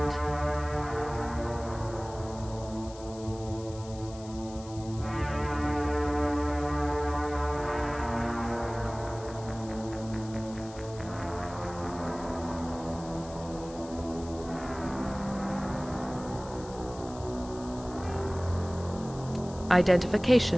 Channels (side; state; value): left; noise; hiss, 19 dB below the sound